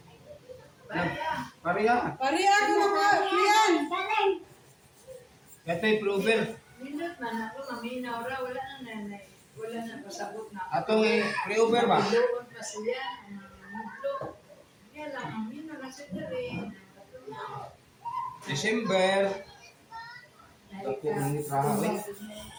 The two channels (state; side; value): identical; both; correlation 1.00